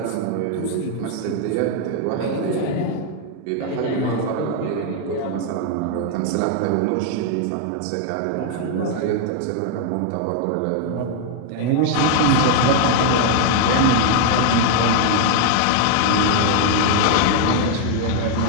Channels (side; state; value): both; different; correlation 0.00